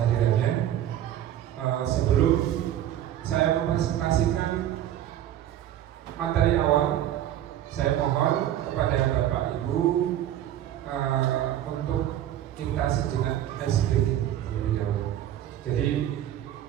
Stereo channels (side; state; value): left; quieter; 11.8 dB